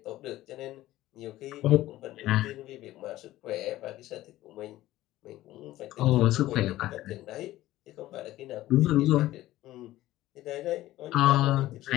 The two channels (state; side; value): quieter; right; 15.7 dB